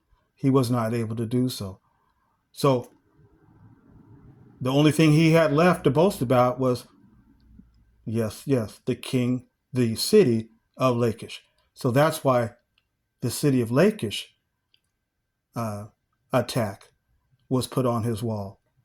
He was not able to do so. So the only thing he had left to boast about was, yes, the city of Lachish. So that's why the city of Lachish attack was put on his wall,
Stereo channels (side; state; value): both; identical; correlation 1.00